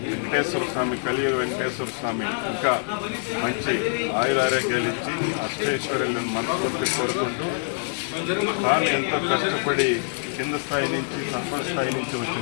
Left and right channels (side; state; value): right; silent; digital silence